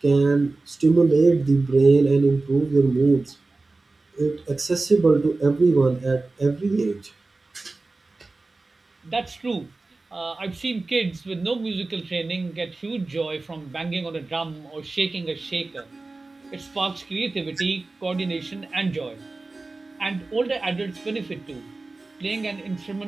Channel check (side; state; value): left; quieter; 3.4 dB